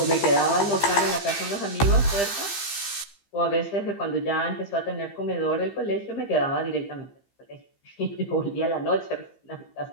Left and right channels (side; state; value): right; late; 15 ms